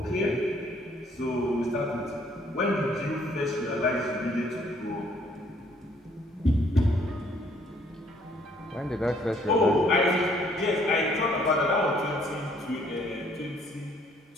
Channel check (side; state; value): both; normal; correlation 0.63